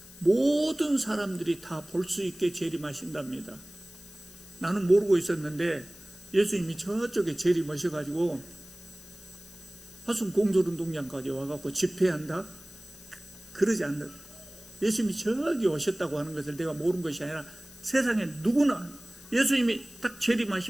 모든 사람들이 다 볼 수 있게 재림하신답니다. 나는 모르고 있었는데 예수님이 저쪽에 재림하셔가지고 화순 공설운동장까지 와갖고 집회한다? 그러지 않는다. 예수님이 저기 오셨다고 하는 것을 내가 모르는 것이 아니라 세상에 누구나 예수님이 딱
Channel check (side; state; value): left; noise; hiss, 19 dB below the sound